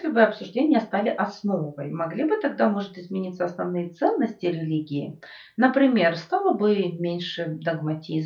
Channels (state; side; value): identical; both; correlation 1.00